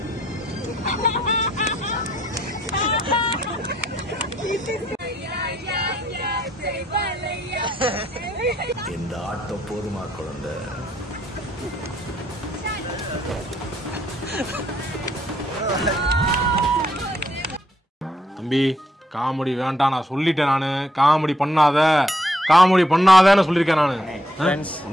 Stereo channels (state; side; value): normal; both; correlation 0.73